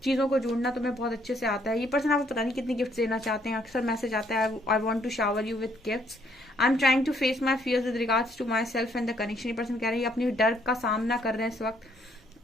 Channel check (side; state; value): both; normal; correlation 0.68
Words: चीजों को जोड़ना तुम्हें बहुत अच्छे से आता है। ये पर्सन आपको पता नहीं कितनी गिफ्ट देना चाहते हैं, अक्सर मैसेज आता है I want to shower you with gifts, I am trying to face my fears with regards to myself and the connection. ये पर्सन कह रहे हैं अपने डर का सामना कर रहे हैं इस